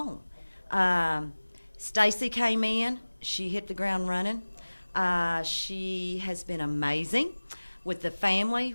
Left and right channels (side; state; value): both; inverted; correlation -1.00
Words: Stacy came in. She hit the ground running. She has been amazing with the family,